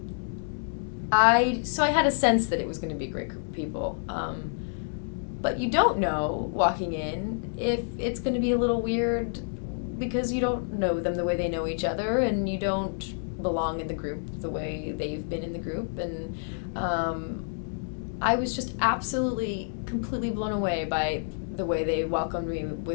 I had a sense that it was going to be a great group of people. But you don't know, walking in, if it's going to be a little weird because you don't know them the way they know each other, and you don't belong in the group the way they've been in the group. And I was just absolutely, completely blown away by the way they welcomed me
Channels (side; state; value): right; silent; digital silence